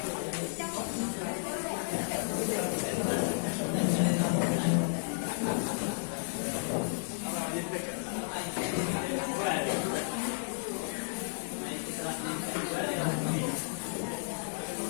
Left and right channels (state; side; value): silent; right; 56 dB below the other